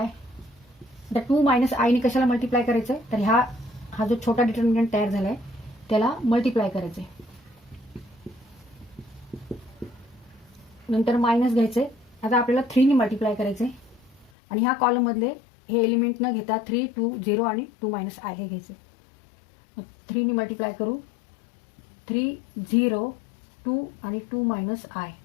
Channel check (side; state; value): right; drops out; at 14.3 s